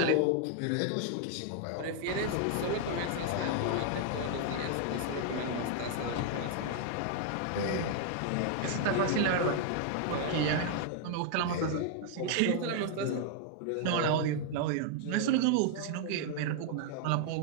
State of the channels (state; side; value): different; both; correlation 0.00